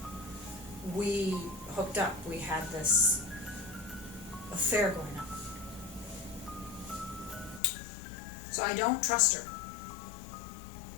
we hooked up, we had this affair going on. So I don't trust her.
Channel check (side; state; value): right; drops out; at 7.6 s